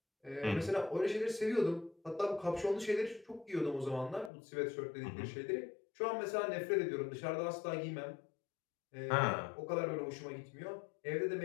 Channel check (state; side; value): drops out; right; at 4.3 s